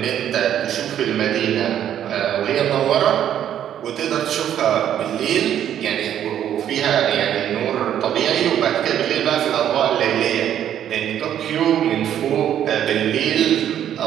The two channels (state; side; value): quieter; left; 10.3 dB